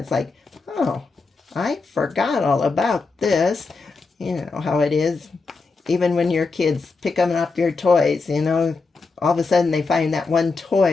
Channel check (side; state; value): right; quieter; 4.2 dB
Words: It's like, oh, I forgot all about this. You know how it is. Even when your kids pick up your toys, all of a sudden they find that one